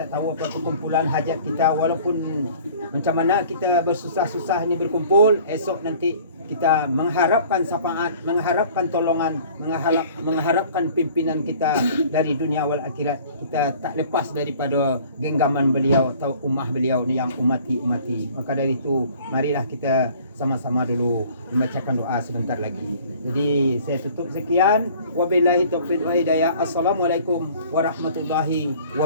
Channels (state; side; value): inverted; both; correlation -0.50